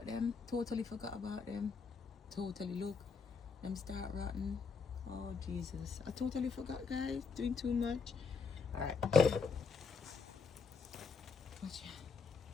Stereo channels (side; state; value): right; quieter; 5.0 dB